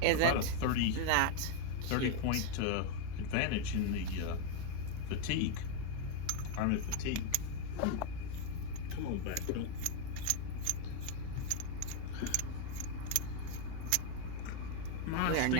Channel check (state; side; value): different; both; correlation 0.01